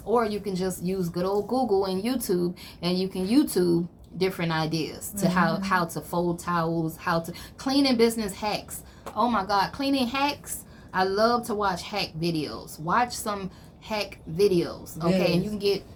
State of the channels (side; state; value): both; identical; correlation 1.00